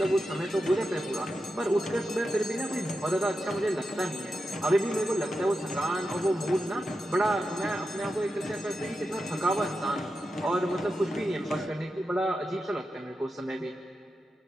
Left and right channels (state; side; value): normal; both; correlation 0.89